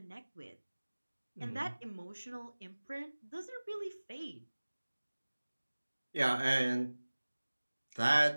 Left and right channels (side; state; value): both; inverted; correlation -1.00